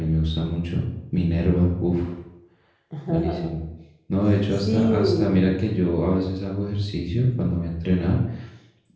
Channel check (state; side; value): identical; both; correlation 1.00